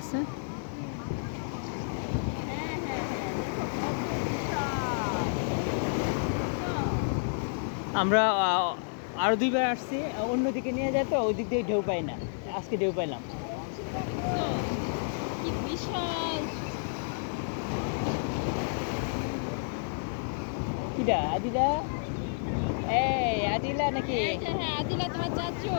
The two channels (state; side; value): silent; right; digital silence